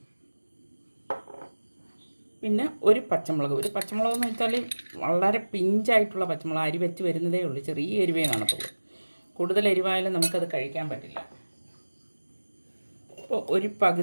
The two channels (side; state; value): both; inverted; correlation -1.00